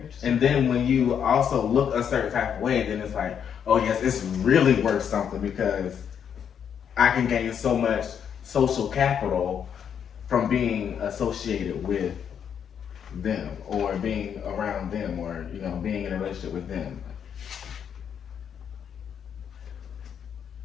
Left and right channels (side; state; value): right; quieter; 8.1 dB